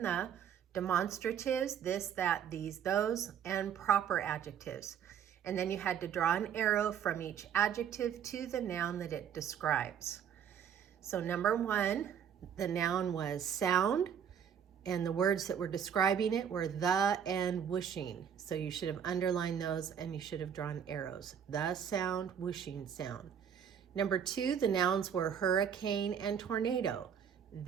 the, demonstratives, this, that, these, those, and proper adjectives. And then you had to draw an arrow from each adjective to the noun that it describes. So number one, the noun was sound, and the words that were describing it were the and whooshing. So you should have underlined those and you should have drawn arrows. The sound, whooshing sound. Number two, the nouns were hurricane and tornado.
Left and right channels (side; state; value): left; quieter; 8.3 dB